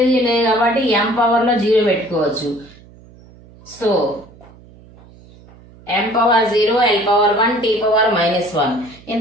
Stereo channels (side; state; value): right; noise; hum, 24 dB below the sound